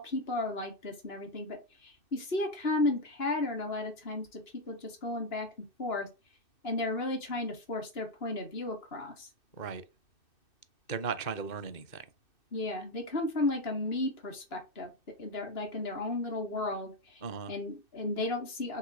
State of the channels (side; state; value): right; late; 2.6 ms